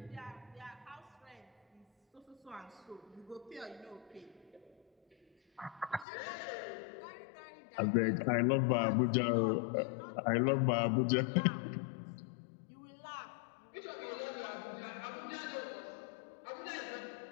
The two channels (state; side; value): drops out; right; at 6.1 s